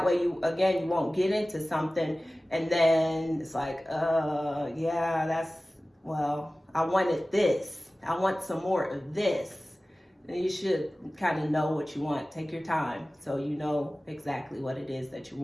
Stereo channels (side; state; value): both; normal; correlation 0.97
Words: way you won't get into something and then it's like, I wanted this. I want some more of this. And you should kind of know what you want. Take your time so you know exactly what it is that you